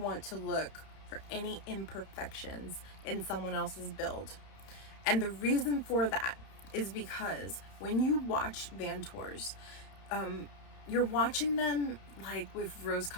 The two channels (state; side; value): late; right; 31 ms